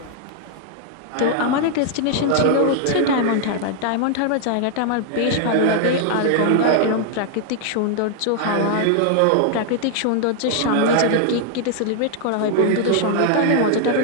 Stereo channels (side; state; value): both; different; correlation 0.00